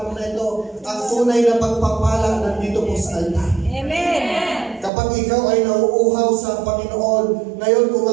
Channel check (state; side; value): drops out; left; at 4.9 s